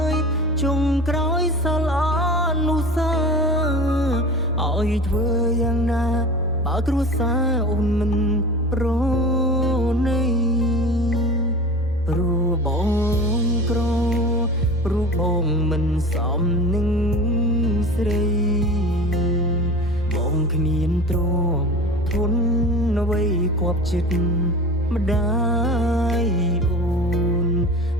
យចុងក្រោយសល់អនុស្សាវរីយ៍ឲ្យធ្វើយ៉ាងណាបើគ្រួសារអូនមិនប្រណីព្រោះបងក្រព្រោះបងមិនសមនឹងស្រីបងគ្មានទ្រព្យធនអ្វីគប់ចិត្តម្ដាយអូន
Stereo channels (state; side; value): normal; both; correlation 0.36